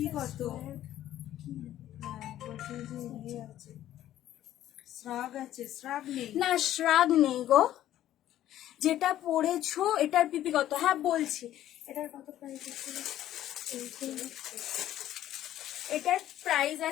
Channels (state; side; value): quieter; right; 12.7 dB